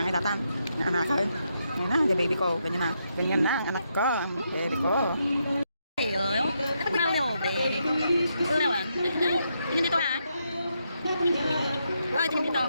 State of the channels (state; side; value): inverted; both; correlation -0.80